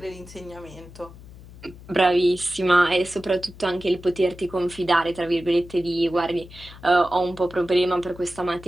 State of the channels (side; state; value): left; noise; hum, 18 dB below the sound